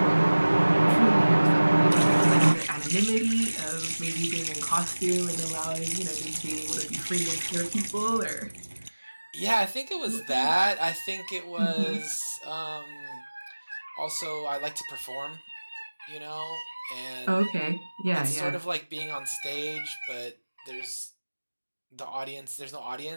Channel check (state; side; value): inverted; both; correlation -1.00